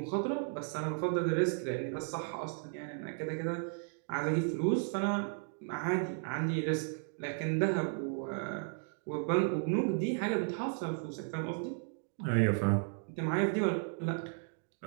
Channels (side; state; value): left; silent; 55 dB below the other